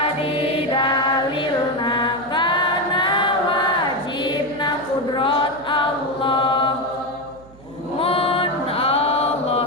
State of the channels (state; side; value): noise; right; hum, 23 dB below the sound